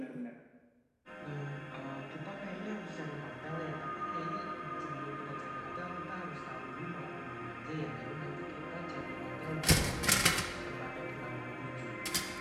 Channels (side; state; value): both; identical; correlation 1.00